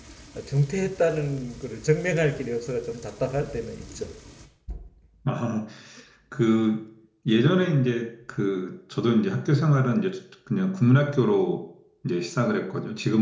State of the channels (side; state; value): both; identical; correlation 1.00